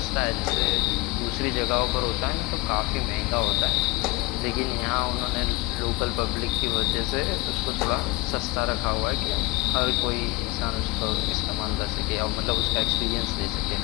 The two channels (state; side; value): quieter; right; 23.5 dB